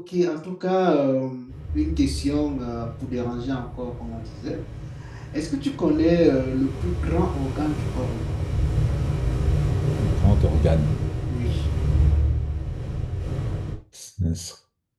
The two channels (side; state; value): both; identical; correlation 1.00